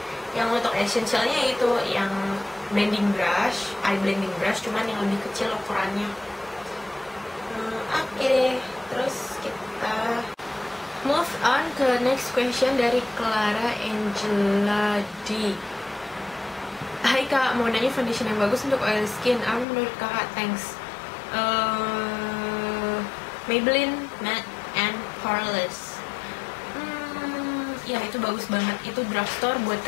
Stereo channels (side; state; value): right; drops out; at 19.7 s